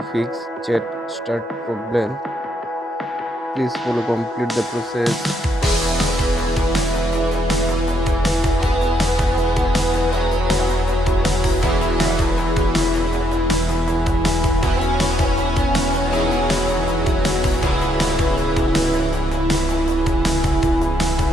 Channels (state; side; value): normal; both; correlation 0.75